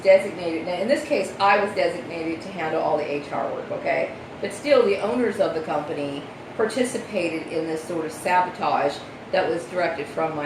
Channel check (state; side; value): identical; both; correlation 1.00